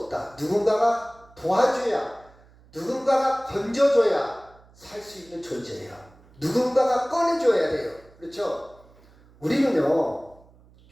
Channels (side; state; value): right; noise; hum, 27 dB below the sound